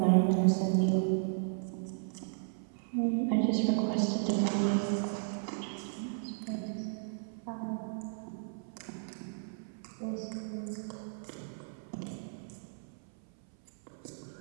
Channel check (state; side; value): silent; left; 55 dB below the other